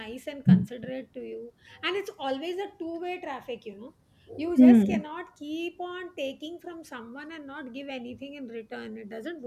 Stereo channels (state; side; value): identical; both; correlation 1.00